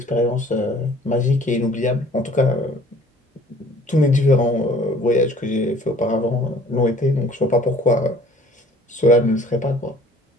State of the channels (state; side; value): normal; both; correlation 0.53